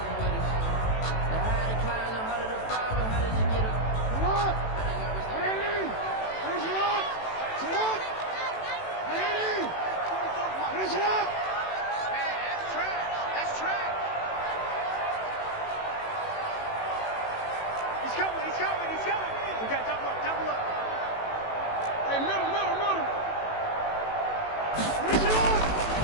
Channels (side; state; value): right; late; 18 ms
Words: coming. He's coming. We got to double up. Hey, middle.